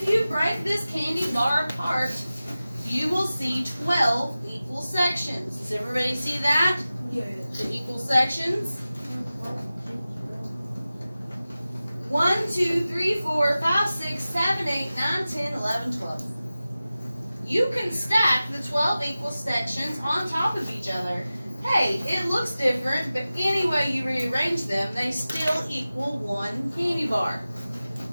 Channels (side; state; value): both; inverted; correlation -0.95